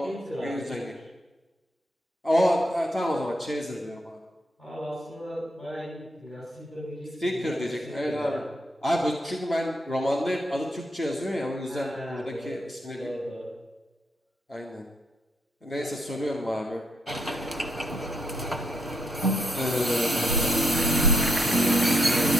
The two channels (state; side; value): normal; both; correlation 0.77